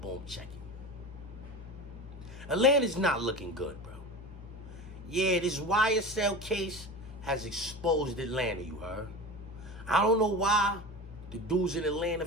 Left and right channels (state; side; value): normal; both; correlation 0.30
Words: check it. Atlanta's not looking good, bro. Yeah, this YSL case has exposed Atlanta, you heard? I don't know why the dudes in Atlanta